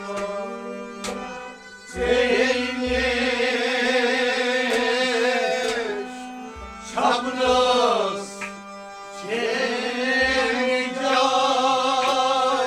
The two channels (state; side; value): identical; both; correlation 1.00